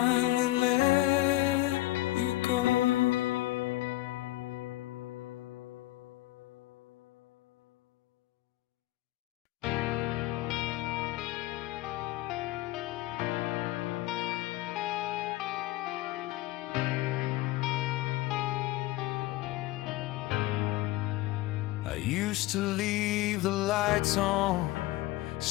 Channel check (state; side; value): quieter; right; 17.7 dB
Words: let you go. used to leave the lights on,